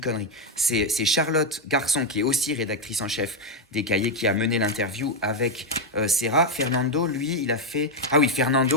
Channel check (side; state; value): both; normal; correlation 0.03